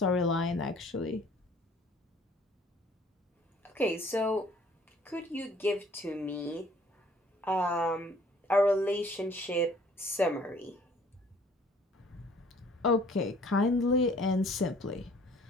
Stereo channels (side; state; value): both; normal; correlation 0.56